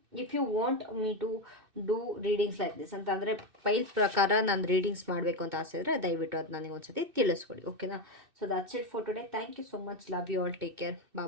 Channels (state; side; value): late; left; 2.6 ms